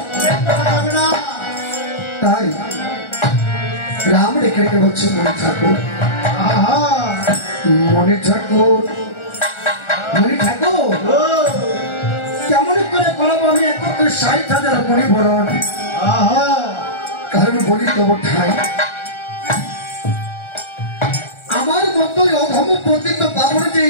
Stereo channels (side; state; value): right; late; 1.4 ms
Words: তাই রাম রেখে রেখে বলছে মনে ঠাকুর, মনে ঠাকুর, মনে ঠাকুর কেমন করে করাবো আমি একত্রে 60,000 মণি বরণ। কারণ বলি তব ঠাই আমার মতোই অধম পতিত পাবন যে